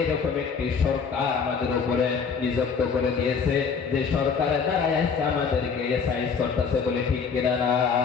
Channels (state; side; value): quieter; right; 5.8 dB